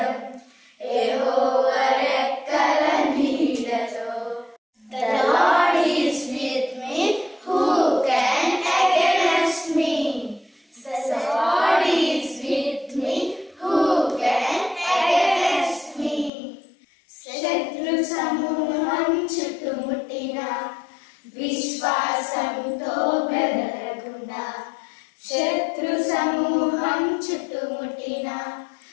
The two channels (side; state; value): right; drops out; at 16.3 s